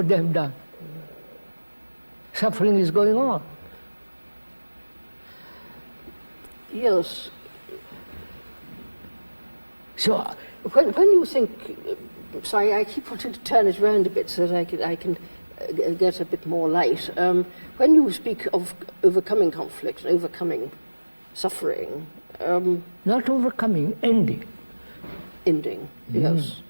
they have done. Suffering is going on. yes. So, When you think, sorry, I keep wanting to turn it around a bit so that I can get a bit more light. When you speak of overcoming conflict and overcoming suffering, not overcoming, ending. ending, yes.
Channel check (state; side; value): inverted; both; correlation -1.00